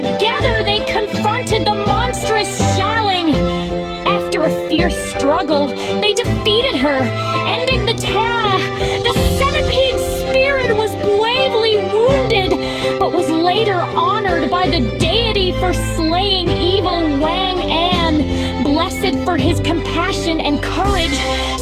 they confronted the monstrous Xialing. After a fierce struggle, they defeated her, ending the Terra. The centipede spirit was bravely wounded, but was later honored by the deity for slaying evil Wang An. Blessed for his compassion and courage,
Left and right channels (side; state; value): both; identical; correlation 1.00